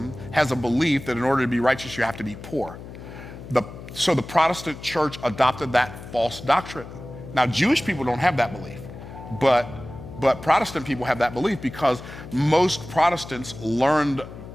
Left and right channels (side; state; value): left; noise; hum, 14 dB below the sound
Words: has a belief that in order to be righteous, you have to be poor. So the Protestant church adopted that false doctrine. Now, Jewish people don't have that belief, but Protestant people have that belief because most Protestants learned